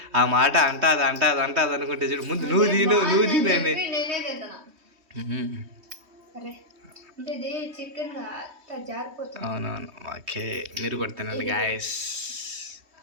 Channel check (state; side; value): late; left; 3.2 ms